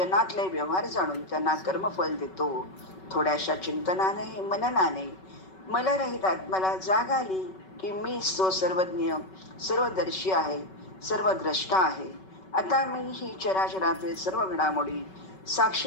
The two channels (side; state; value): right; late; 5.3 ms